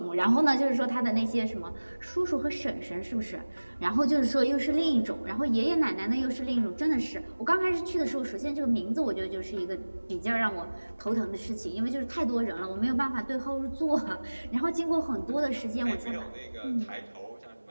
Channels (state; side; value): inverted; both; correlation -1.00